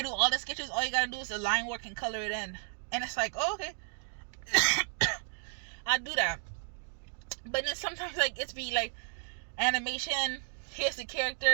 do all the sketches. All you gotta do is the line work and color it in, and it's like, oh, okay, I do that. But then sometimes like it's be like animation. Here's the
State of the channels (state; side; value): silent; left; digital silence